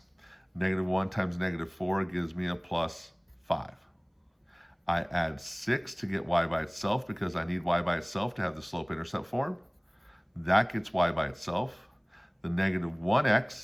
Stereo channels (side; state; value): both; identical; correlation 1.00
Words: -1 times -4 gives me a plus 5. I add 6 to get y by itself because I need y by itself to have the slope-intercept form. That gets y by itself. The